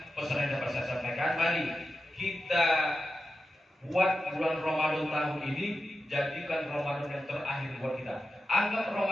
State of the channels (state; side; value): normal; both; correlation 0.91